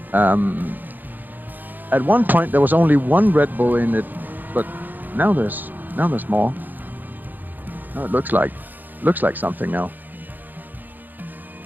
at one point there was only one Red Bull in it, but now there's more. Now it looks like something now.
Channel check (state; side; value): late; left; 0.087 ms